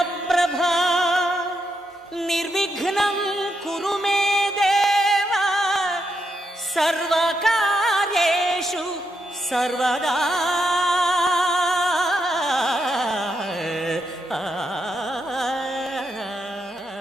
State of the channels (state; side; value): normal; both; correlation 0.81